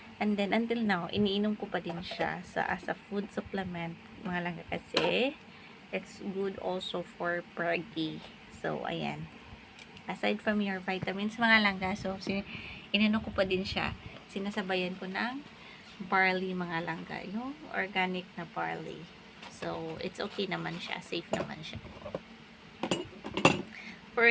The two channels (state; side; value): identical; both; correlation 1.00